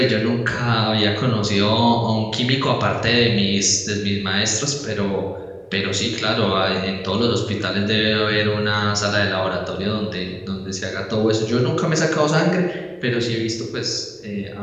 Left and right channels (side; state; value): both; identical; correlation 1.00